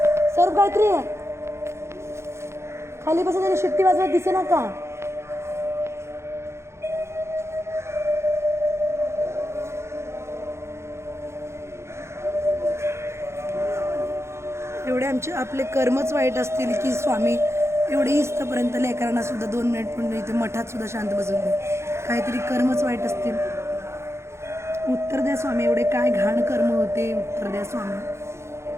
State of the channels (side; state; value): left; late; 0.13 ms